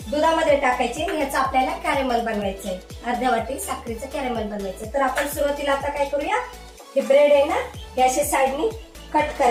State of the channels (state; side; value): identical; both; correlation 1.00